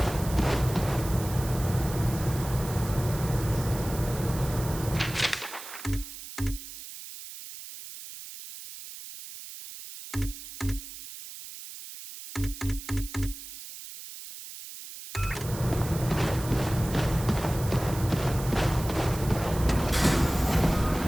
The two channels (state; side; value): noise; right; hiss, 12 dB below the sound